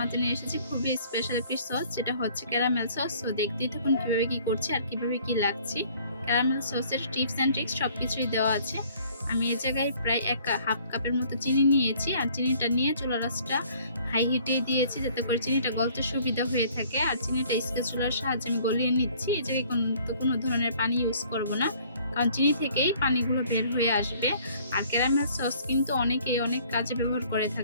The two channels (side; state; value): both; inverted; correlation -0.56